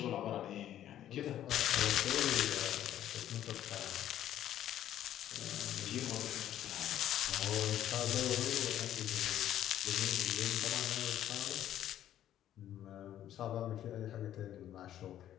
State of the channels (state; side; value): quieter; right; 11.7 dB